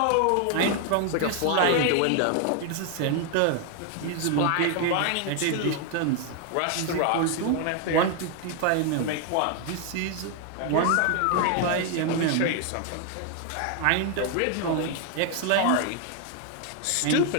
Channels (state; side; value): different; both; correlation 0.00